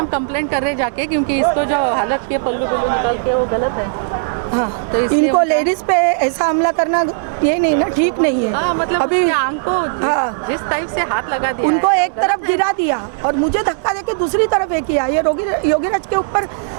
कंप्लेंट कर रहे जाके, क्योंकि इसको जो हालत के पल्लू निकाल के वो गलत है। हाँ, तो इसलिए इनको लेडीज पे ऐसा हमला करना ये नहीं ना, ठीक नहीं है। हाँ, मतलब अभी उसके आंख को हाँ। जिस टाइप से हाथ लगा दिया उनको है, एक तरफ गिरा दिया और मुझे धक्का देके दूसरी तरफ एक किया। ये योगीराज के ऊपर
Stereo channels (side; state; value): left; quieter; 38.7 dB